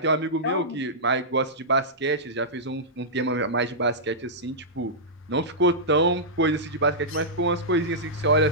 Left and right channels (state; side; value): normal; both; correlation -0.13